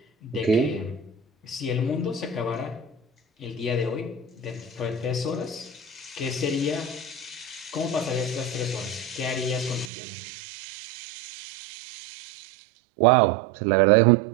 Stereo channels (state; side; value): drops out; left; at 9.9 s